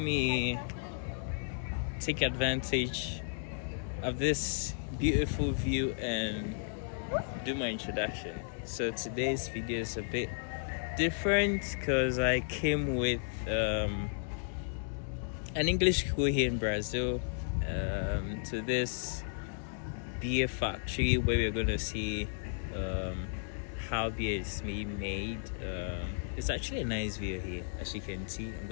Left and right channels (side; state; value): right; silent; digital silence